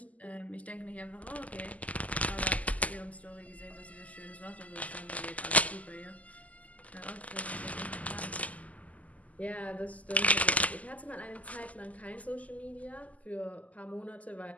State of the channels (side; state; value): right; late; 0.073 ms